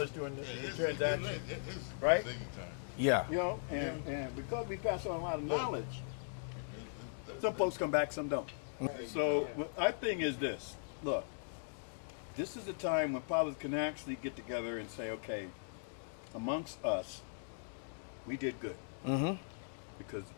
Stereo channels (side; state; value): right; silent; digital silence